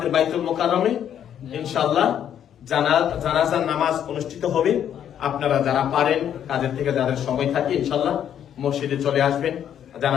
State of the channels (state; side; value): quieter; right; 9.6 dB